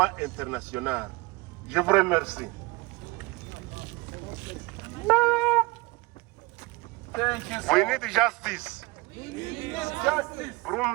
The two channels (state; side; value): quieter; left; 23.4 dB